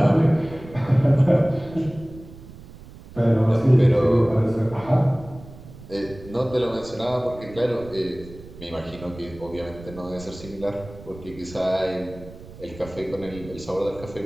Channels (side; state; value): right; noise; rumble, 17 dB below the sound